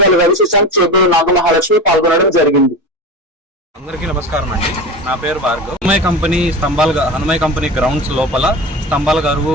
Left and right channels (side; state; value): both; normal; correlation 0.28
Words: రవి శశాంక్, చేపూరు నాగమహాలక్ష్మి పాల్గొనడం జరిగింది. అందరికీ నమస్కారం అండి. నా పేరు భార్గవ్. హనుమయ్య కంపెనీ గ్రౌండ్స్ లోపల స్తంభాల గరువు